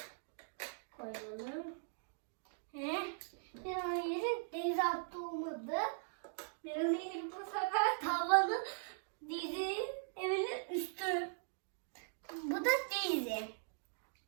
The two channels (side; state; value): left; silent; digital silence